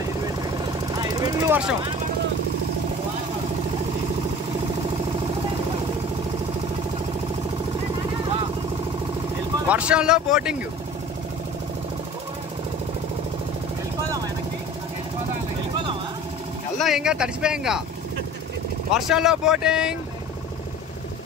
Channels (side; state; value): both; normal; correlation 0.42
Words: ఫుల్ వర్షం. వర్షంలో బోటింగ్. వెళ్దాం ఇంకా తడిసిపోయాంగా. వర్షంలో బోటింగ్.